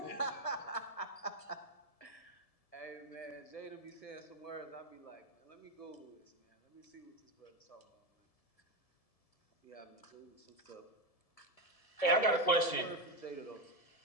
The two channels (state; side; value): late; right; 1.7 ms